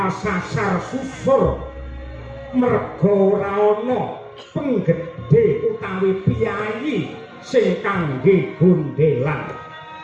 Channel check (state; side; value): identical; both; correlation 1.00